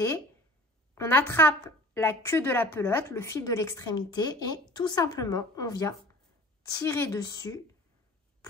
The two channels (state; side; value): normal; both; correlation 0.43